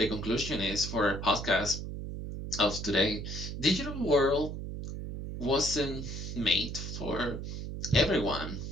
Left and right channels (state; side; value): noise; right; hum, 6 dB below the sound